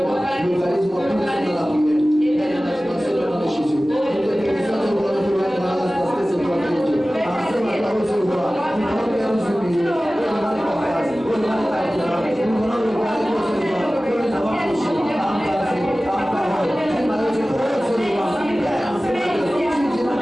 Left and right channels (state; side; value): normal; both; correlation 0.97